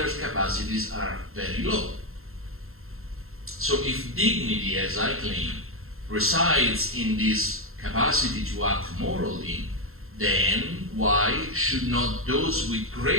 capacities are very low. So if dignity, as I claim, resides in this capacity to act morally, then why should not those with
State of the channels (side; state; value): left; late; 0.62 ms